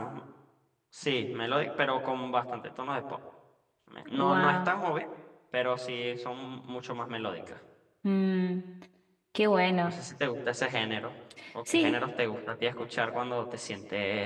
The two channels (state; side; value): identical; both; correlation 1.00